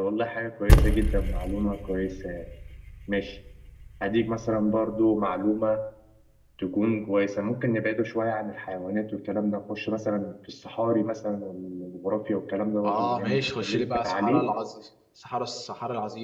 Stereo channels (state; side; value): identical; both; correlation 1.00